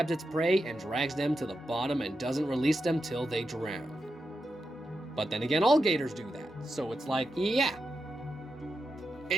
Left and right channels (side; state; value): both; normal; correlation 0.87